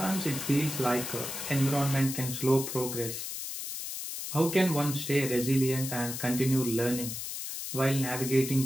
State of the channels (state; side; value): noise; left; hiss, 6 dB below the sound